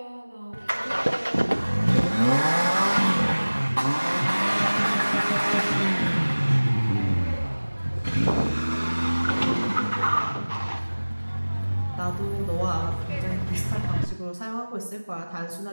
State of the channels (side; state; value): both; inverted; correlation -1.00